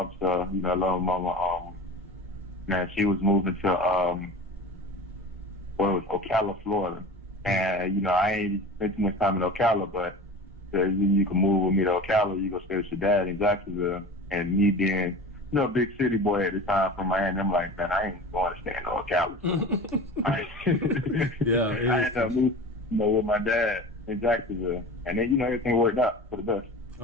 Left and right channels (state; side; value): normal; both; correlation 0.35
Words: You know, I love my mama. Man, she was moving to Ocala, Florida, and you know, I ain't spent too much time in Ocala, but you can move with me to Ocala. You go stay with your dad in Jacksonville, and me being, you know, a big city boy at the time from Miami, I'm like, man, I ain't going to stay in Ocala. Yeah, I ended up moving, you know, with my dad in Jacksonville, and then, you know, everything worked out for the best.